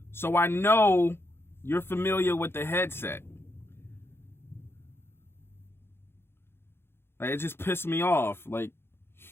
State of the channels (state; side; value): late; right; 0.11 ms